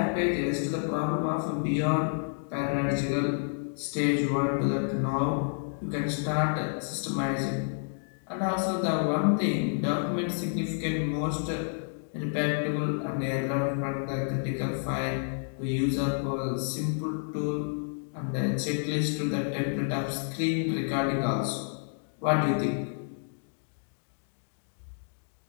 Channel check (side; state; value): right; silent; digital silence